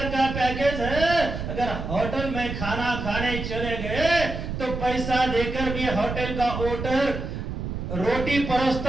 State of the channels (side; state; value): right; noise; rumble, 5 dB below the sound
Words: का पैकेज है। अगर होटल में खाना खाने चले गए तो पैसा देकर भी होटल का ओटर रोटी